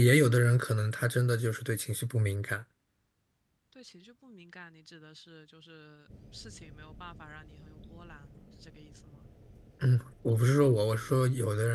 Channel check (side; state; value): both; identical; correlation 1.00